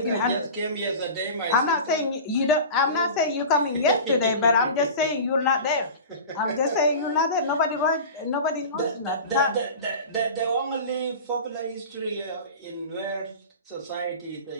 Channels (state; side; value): inverted; both; correlation -0.34